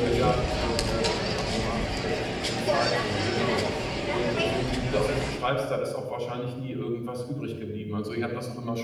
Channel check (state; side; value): identical; both; correlation 1.00